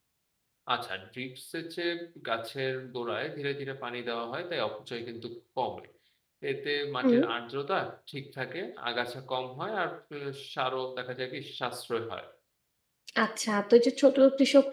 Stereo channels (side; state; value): both; identical; correlation 1.00